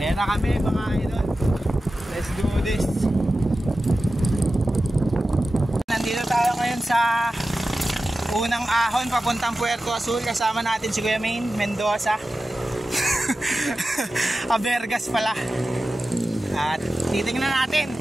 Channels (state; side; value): normal; both; correlation 0.94